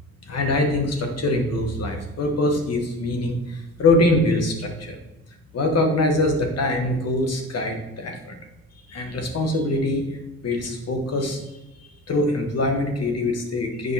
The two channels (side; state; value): both; normal; correlation 0.33